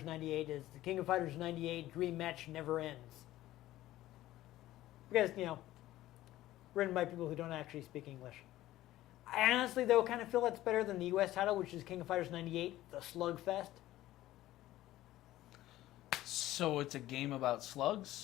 98 is the King of Fighters 98 Dream Match Never Ends. Because, you know, written by people who don't actually speak English. I honestly, though, kind of feel that's better than the US title, which is King of Fighters 98, The Slugfest. So it's a game about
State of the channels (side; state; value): right; quieter; 15.2 dB